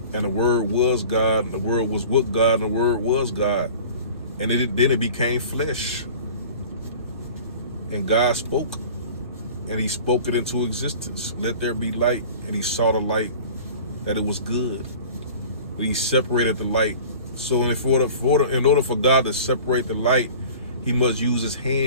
and the Word was God, and the Word was with God, and the Word was God. And then it became flesh. And God spoke, and he spoke it into existence. Let there be light, and he saw the light, that it was good. But he separated the light. So in order for God to separate the light, he must use his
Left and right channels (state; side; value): inverted; both; correlation -0.42